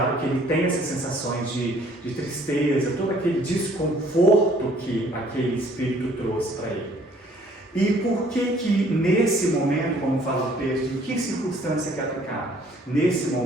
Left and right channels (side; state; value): both; normal; correlation 0.59